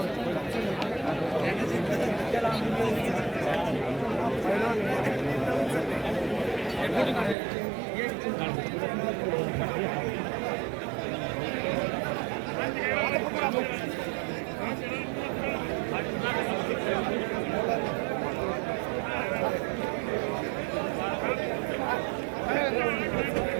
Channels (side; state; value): left; drops out; at 7.4 s